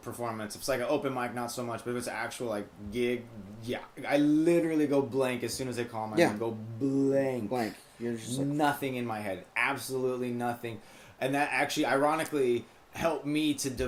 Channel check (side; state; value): both; identical; correlation 1.00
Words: performance. If it's like an open mic, not so much, but if it's an actual, like, gig, yeah. I literally go blank as soon as they call my name. Go blank. Nothing in my head. Absolutely nothing. And that actually, ironically, helped me to